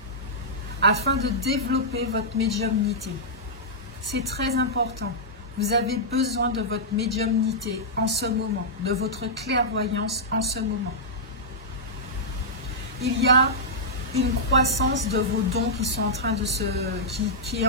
afin de développer votre médiumnité. C'est très important. Vous avez besoin de votre médiumnité en ce moment, de votre clairvoyance en ce moment. Il y a une croissance de vos dons qui sont en train de qui est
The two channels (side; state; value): both; normal; correlation -0.11